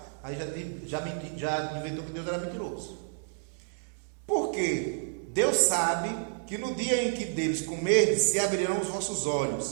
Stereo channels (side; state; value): left; silent; digital silence